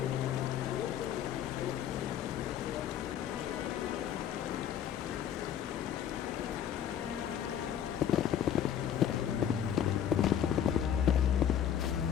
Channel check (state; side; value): quieter; right; 9.6 dB